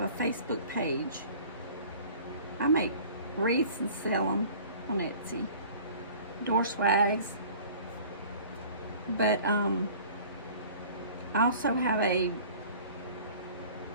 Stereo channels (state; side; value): inverted; both; correlation -0.46